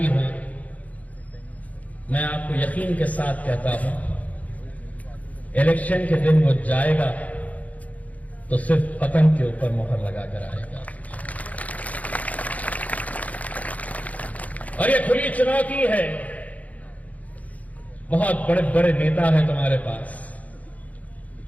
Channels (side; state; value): right; late; 0.071 ms